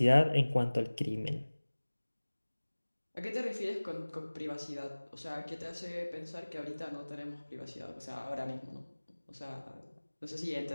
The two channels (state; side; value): inverted; both; correlation -1.00